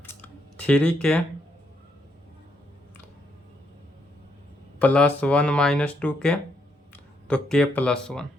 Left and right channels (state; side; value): normal; both; correlation 0.76